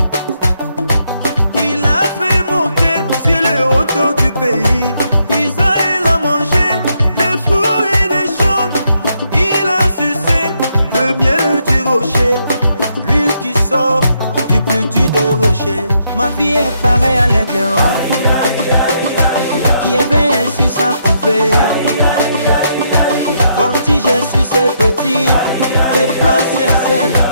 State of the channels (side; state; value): both; inverted; correlation -0.76